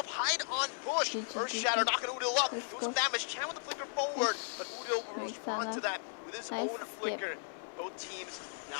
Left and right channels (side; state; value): right; silent; 54 dB below the other